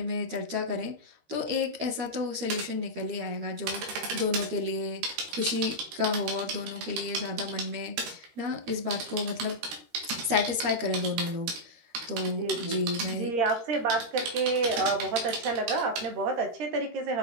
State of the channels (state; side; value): late; left; 13 ms